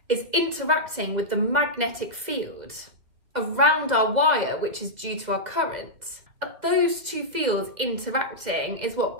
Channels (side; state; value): left; late; 2.3 ms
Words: is interacting with the magnetic field around our wire, which is due to our current. And those two fields interacting is what